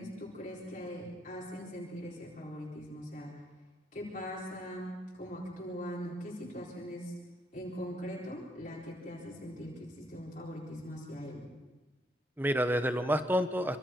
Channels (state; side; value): normal; both; correlation 0.74